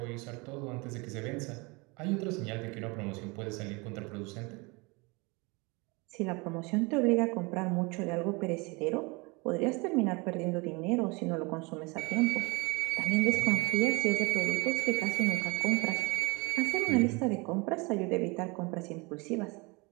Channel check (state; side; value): quieter; left; 27.3 dB